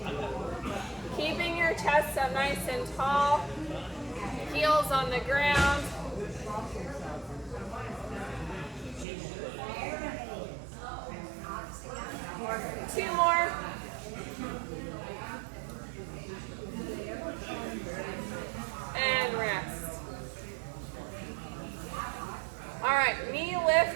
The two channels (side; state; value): left; drops out; at 9.1 s